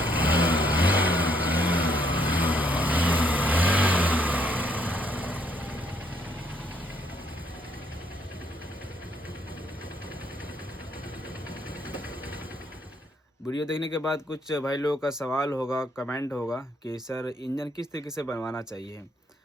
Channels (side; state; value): both; normal; correlation 0.70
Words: वीडियो देखने के बाद कुछ भाई लोगों का सवाल होगा, कमेंट होगा कि सर इंजन किस तरीके से बनवाना चाहिए।